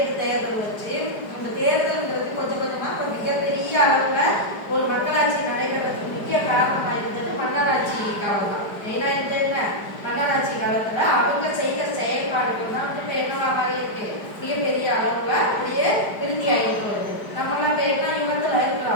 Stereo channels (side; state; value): right; late; 4.9 ms